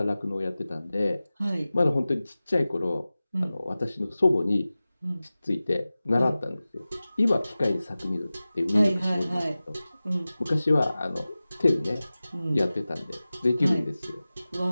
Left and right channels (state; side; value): inverted; both; correlation -0.97